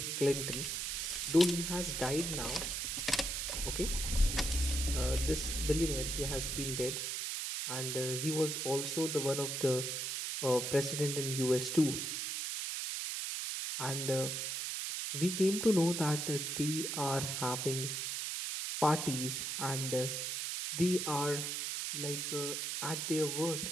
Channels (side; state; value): right; noise; hiss, 2 dB below the sound